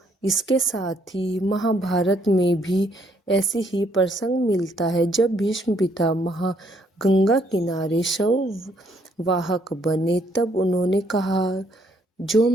इसके साथ ही महाभारत में भी ऐसे ही प्रसंग मिलता है। जब भीष्म पितामह गंगा किनारे शव वाहक बने तब उन्होंने कहा, जो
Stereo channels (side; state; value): both; normal; correlation 0.69